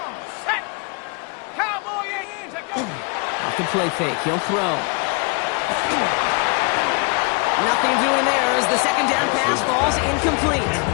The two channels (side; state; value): right; quieter; 33.1 dB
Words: set. Cowboy in. Off the play fake. He'll throw. Nothing doing there as the second down pass falls incomplete.